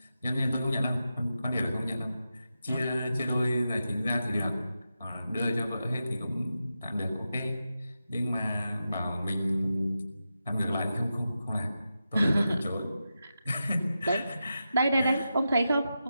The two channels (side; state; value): both; inverted; correlation -0.89